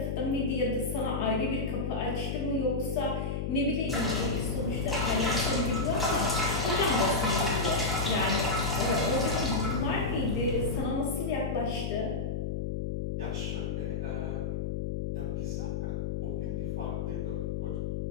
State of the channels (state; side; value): noise; left; hum, 1 dB below the sound